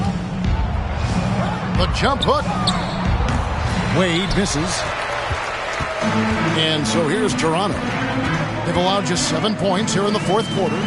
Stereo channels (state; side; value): identical; both; correlation 1.00